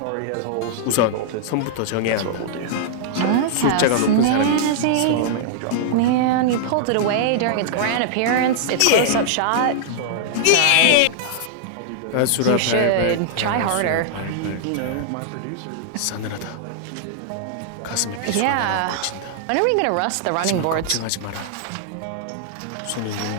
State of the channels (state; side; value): different; both; correlation -0.01